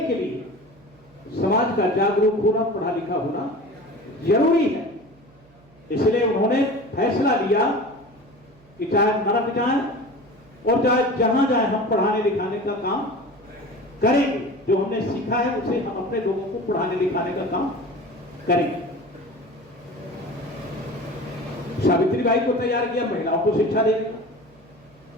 के लिए समाज का जागरूक होना, पढ़ा लिखा होना जरूरी है। इसलिए उन्होंने फैसला लिया कि चाहे नरक जाए और चाहे जहां जाए, हम पढ़ाने लिखाने का काम करेंगे। जो हमने सीखा है उसे हम अपने लोगों को पढ़ाने लिखाने का काम करेंगे। सावित्रीबाई को तैयार किया महिलाओं को शिक्षा देने का।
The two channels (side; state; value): right; noise; hum, 28 dB below the sound